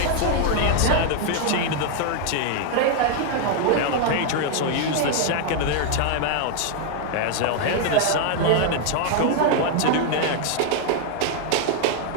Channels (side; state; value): both; different; correlation 0.00